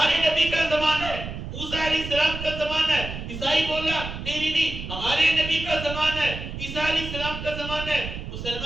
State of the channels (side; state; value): right; noise; rumble, 8 dB below the sound